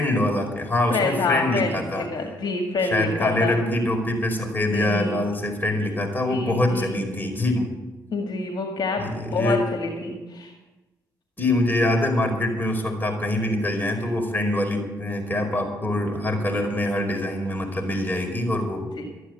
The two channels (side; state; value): both; normal; correlation 0.68